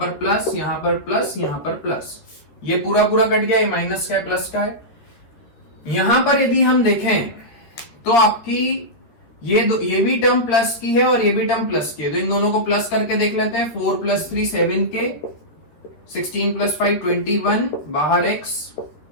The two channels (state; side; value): late; right; 13 ms